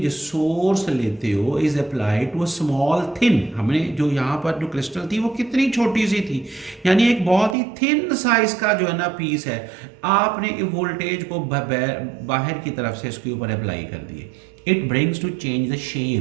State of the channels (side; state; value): left; drops out; at 7.6 s